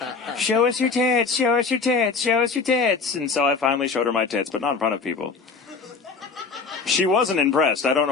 Show us your tits, show us your tits, show us your tits. And so I finally showed her my tits, but not in front of people. She wasn't impressed. I don't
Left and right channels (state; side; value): quieter; right; 4.8 dB